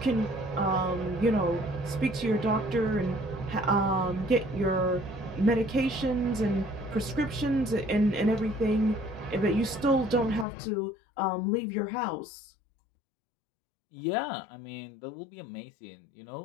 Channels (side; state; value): right; drops out; at 10.5 s